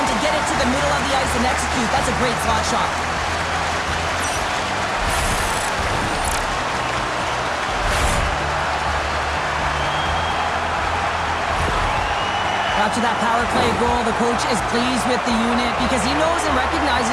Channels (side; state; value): both; identical; correlation 1.00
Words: to get it to the middle of the ice and execute. That's a great slot shot. After that power play goal, the coach is pleased with the unit because he knows and